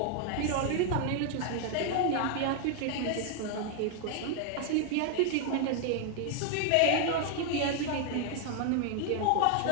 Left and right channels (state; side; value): different; both; correlation 0.00